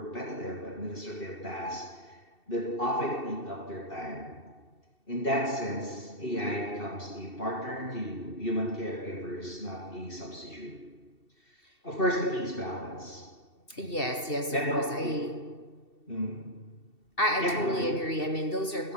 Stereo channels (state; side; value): late; right; 2.7 ms